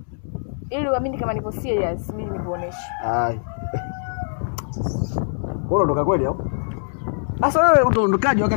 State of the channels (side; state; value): right; silent; 64 dB below the other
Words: Ili uamini kama nipo serious, mimi nikuoneshe. Bora ndo kweli au? Sasa wewe utaondokaje